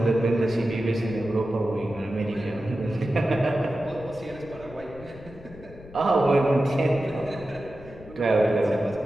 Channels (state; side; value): noise; left; rumble, 19 dB below the sound